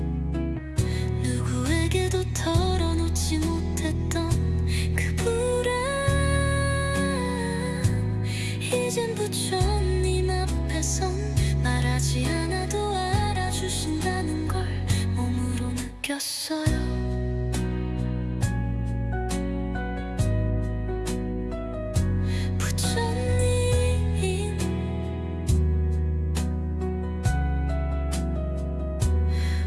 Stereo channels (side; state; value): both; identical; correlation 1.00